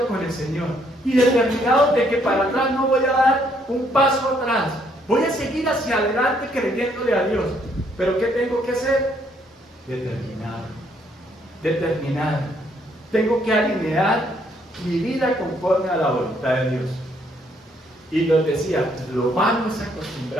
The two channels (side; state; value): both; normal; correlation 0.69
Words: con el Señor y determinados de que para atrás no voy a dar un paso atrás, voy a seguir hacia adelante creyéndole a Dios. Pero ¿qué tengo que hacer? Determinado. Tengo que alinear mi vida conforme a la voluntad de Dios. Y nos decía, lo vamos a